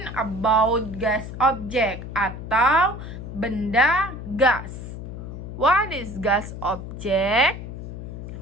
about gas object atau benda gas. What is gas object?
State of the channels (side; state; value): left; noise; hum, 9 dB below the sound